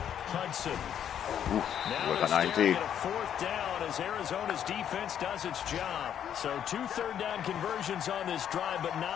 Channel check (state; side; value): quieter; right; 9.5 dB